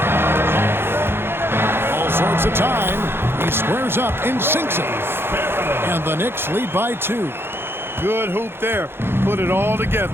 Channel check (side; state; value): left; late; 0.11 ms